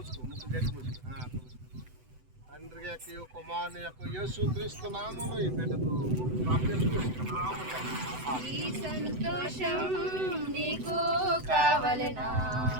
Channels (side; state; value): left; late; 7.9 ms